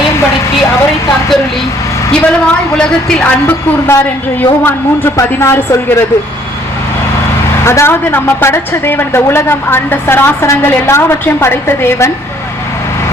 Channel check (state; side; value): normal; both; correlation 0.62